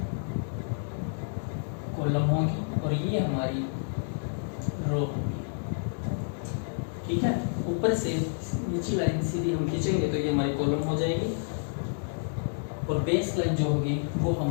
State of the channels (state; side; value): silent; right; digital silence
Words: कॉलम होंगी और ये हमारी रो होगी। ठीक है, ऊपर से नीचे लाइन सीधी हम खींचेंगे तो ये हमारी कॉलम हो जाएगी और बेस लाइन जो होगी वो